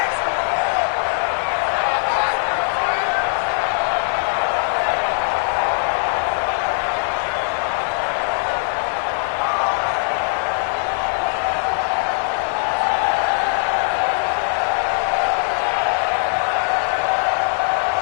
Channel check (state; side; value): silent; right; digital silence